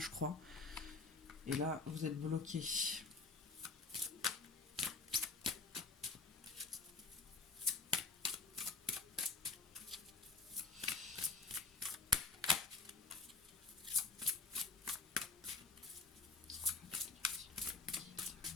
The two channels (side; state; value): right; quieter; 3.9 dB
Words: crois. Et là, vous êtes bloqué.